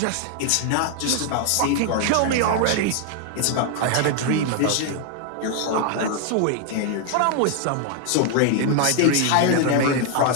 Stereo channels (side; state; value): both; different; correlation 0.00